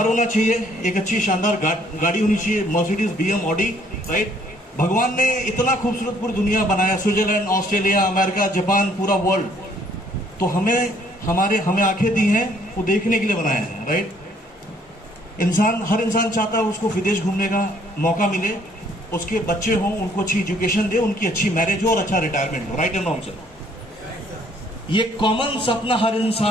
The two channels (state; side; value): normal; both; correlation 0.63